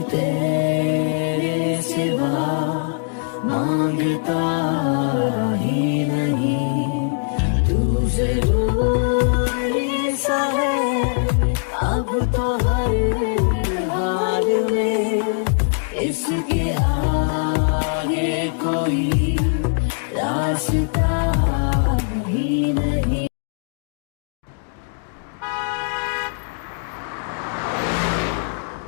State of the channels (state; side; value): silent; right; digital silence